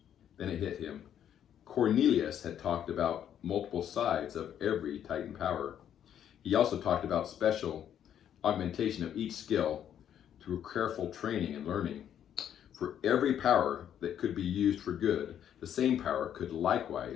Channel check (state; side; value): quieter; right; 9.8 dB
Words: Then it hit him. Cornelius had talked about multiple sides of every Titan power. He also talked about special augmentation of each skill through careful training and learning. For every power that could be used for good, the same power could